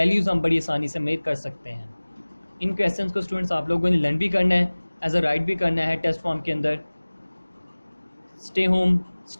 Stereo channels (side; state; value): both; inverted; correlation -1.00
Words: हम बड़ी आसानी से मेजर कर सकते हैं। इन क्वेश्चंस को स्टूडेंट्स आप लोगों ने लर्न भी करना है, एज अ राइट भी करना है टेस्ट फॉर्म के अंदर। स्टे होम,